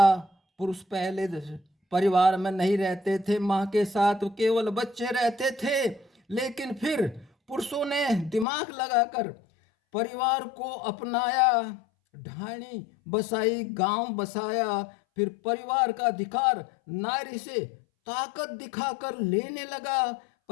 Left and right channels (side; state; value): right; drops out; at 8.5 s